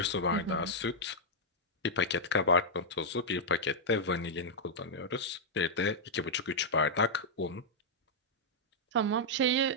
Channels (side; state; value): both; normal; correlation -0.06